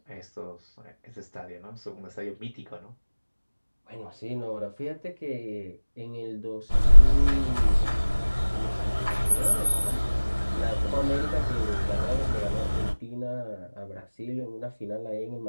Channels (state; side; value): inverted; both; correlation -1.00